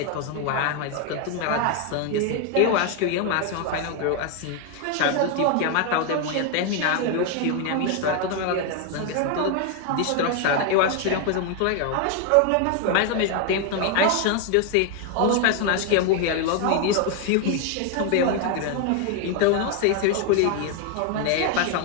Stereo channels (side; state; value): both; different; correlation 0.01